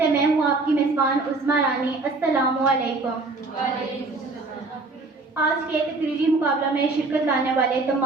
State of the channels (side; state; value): left; quieter; 3.5 dB